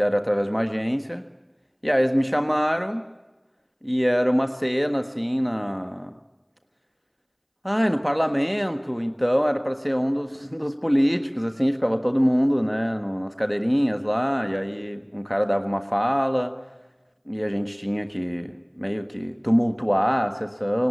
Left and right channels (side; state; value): both; identical; correlation 1.00